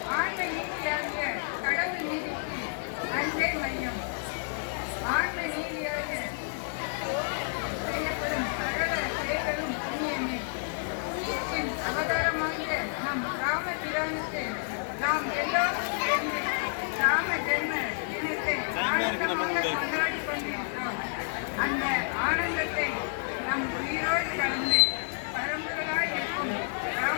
ஆன்ம நீதியாகிய கடவுள் நீதிக்கு அன்பே மையம். ஆன்ம நீதியாக செய்யப்படும் சகல செயல்களும் புண்ணியமே. நீதியின் அவதாரமாக நம் ராமபிரானுக்கு நாம் எல்லோரும் சேர்ந்து ராம ஜென்ம தினத்தை ஆனந்தமாக கொண்டாடி கொண்டிருக்கிறோம். அந்த ஆனந்தத்தை நம் உயிரோடு கலந்து பரம்பரையாய் இருக்கும்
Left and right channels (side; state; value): right; silent; 58 dB below the other